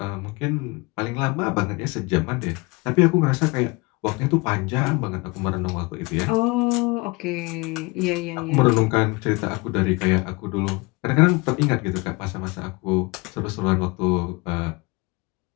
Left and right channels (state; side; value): quieter; right; 25.6 dB